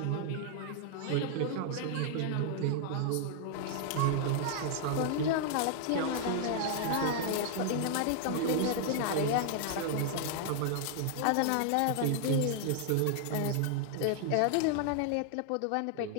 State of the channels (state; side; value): different; both; correlation 0.00